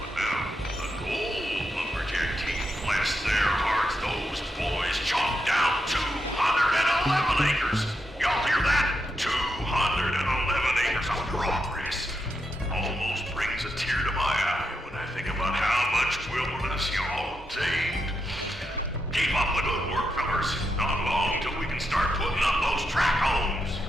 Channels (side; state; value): both; normal; correlation 0.84